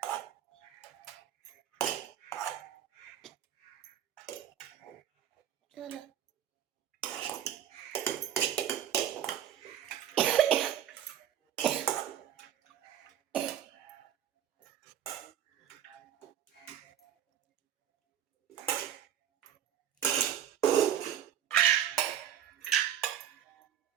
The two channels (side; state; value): left; quieter; 10.1 dB